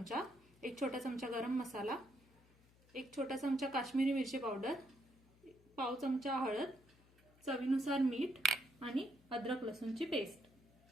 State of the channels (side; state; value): left; noise; hum, 28 dB below the sound